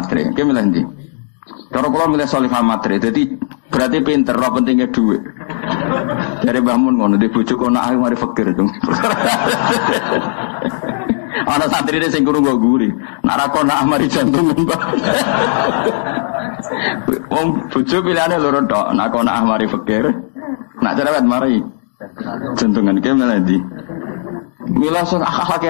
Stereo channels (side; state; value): right; silent; digital silence